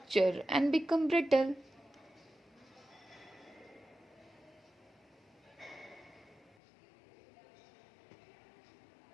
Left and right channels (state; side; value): drops out; right; at 6.5 s